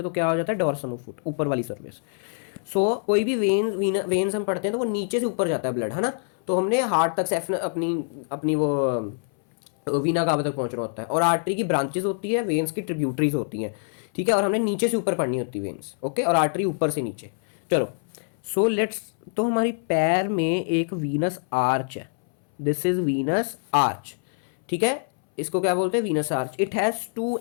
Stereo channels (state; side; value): silent; right; 61 dB below the other